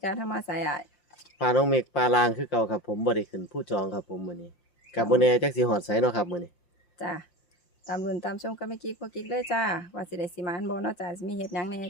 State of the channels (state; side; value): late; right; 5.7 ms